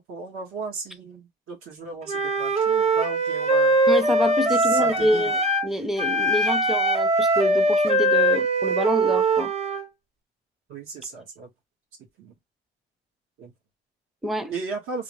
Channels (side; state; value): both; normal; correlation 0.35